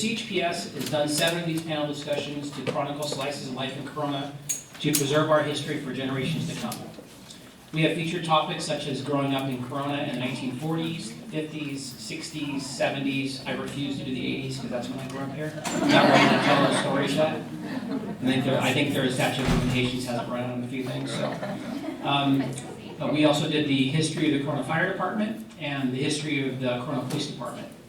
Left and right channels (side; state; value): both; identical; correlation 1.00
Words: has done 7 of these panel discussions to chronicle slices of life in Corona to preserve our history for generations to come. We have featured topics such as growing up in Corona in the 1940s, 50s, 60s, 70s. I refuse to do the 80s because that's when I grew up here. I'm not ready to tell those stories yet. I think their statute of limitations hasn't run out on a few things. So, but we also did the history of the Corona Fire Department and the history of the Corona Police Department.